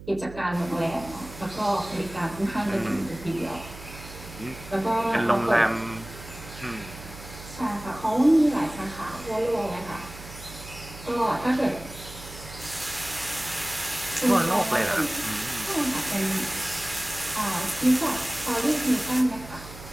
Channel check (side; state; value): right; noise; hum, 15 dB below the sound